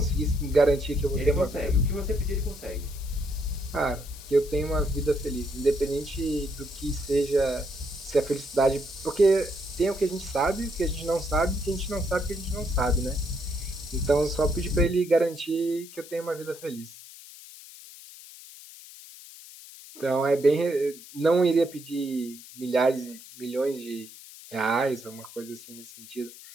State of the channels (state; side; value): noise; left; hiss, 17 dB below the sound